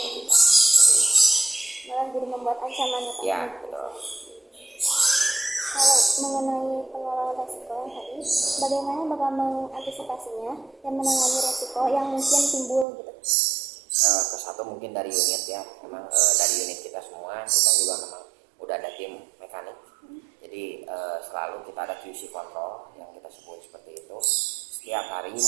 Malah jadi membuat ancaman ya Pak? Ya, betul. Kalau mengenai pengelolaan resiko yang tadi, bagaimana Bapak mengantisipasinya dan menangani resiko yang mungkin timbul gitu? Kesatu mungkin dari unit ya, memang dari unit kita semua, kita juga memang udah ada tim mekanik. Jadi selalu kita ada QC control yang kita sebut seperti itu. Setiap hari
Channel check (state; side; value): drops out; left; at 12.9 s